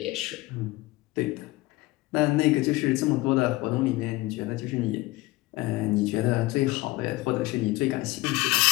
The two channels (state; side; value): quieter; right; 20.1 dB